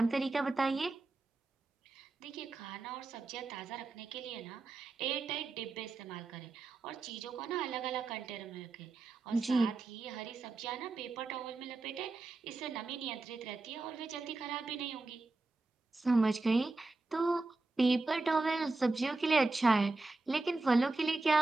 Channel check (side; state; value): left; quieter; 3.4 dB